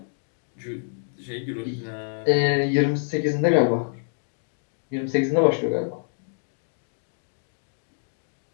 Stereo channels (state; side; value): silent; right; digital silence